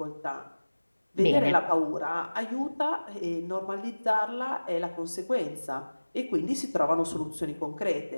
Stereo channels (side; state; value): both; inverted; correlation -1.00